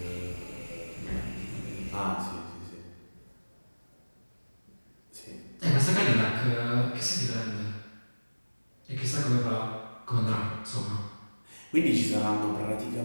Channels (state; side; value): inverted; both; correlation -1.00